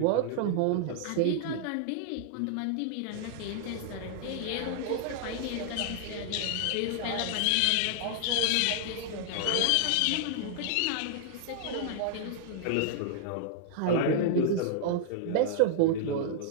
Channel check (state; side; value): different; both; correlation -0.01